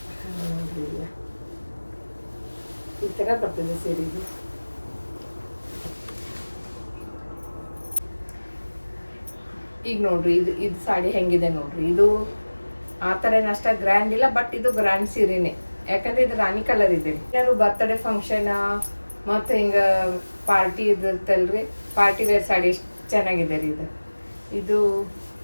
ನೋಡ್ರಿ. ಇಲ್ಲ ಈ ಥರ ಬರ್ತದೆ ಸೀರೆ. ಇದು ಈಗ ನೋಡ್ರಿ, ಇದು ಸಾಡಿ ಹೆಂಗಿದೆ ನೋಡ್ರಿ. ಇದು ಆ ಥರ ಏನು ಅಷ್ಟ ಗ್ರ್ಯಾಂಡ್ ಇಲ್ಲ, ಬಟ್ ಇದು ಗ್ರ್ಯಾಂಡ್ ಸೀರೆನೇ. ಯಾಕಂದ್ರೆ ಇದು ರಾಣಿ ಕಲರ್ ಇದೆ. ಏನಾದ್ರು ಬರ್ತ್ಡೇ ಫಂಕ್ಷನ್ ಮತ್ತು ಹಿಂಗೆ ಪಾರ್ಟಿ ಇದಿರ್ತಲ್ರಿ, ಪಾರ್ಟಿ ವೇರ್ ಸಾಡಿ ಎಷ್ಟು ಚೆನ್ನಾಗಿದೆ ರೀ ಇದು. ಇದು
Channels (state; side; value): inverted; both; correlation -1.00